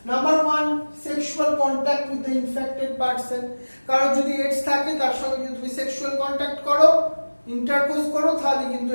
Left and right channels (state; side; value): inverted; both; correlation -1.00